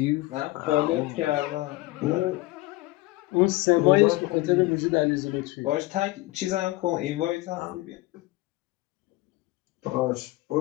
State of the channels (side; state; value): right; quieter; 19.6 dB